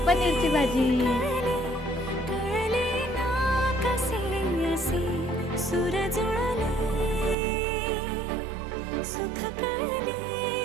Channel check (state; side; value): drops out; left; at 7.4 s